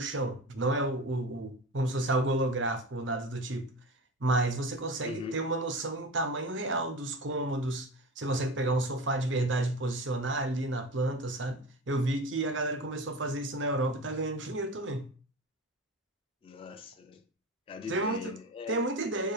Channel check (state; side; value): normal; both; correlation 0.30